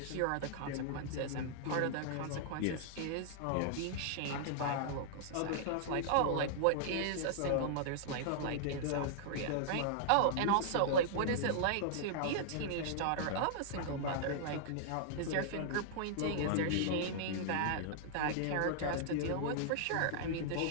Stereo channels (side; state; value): both; different; correlation -0.01